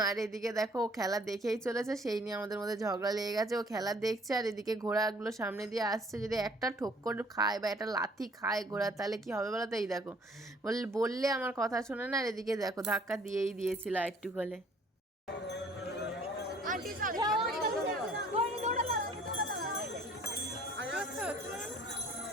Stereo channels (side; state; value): both; normal; correlation 0.57